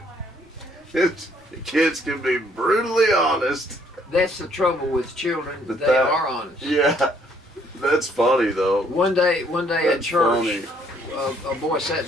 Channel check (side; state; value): both; normal; correlation 0.65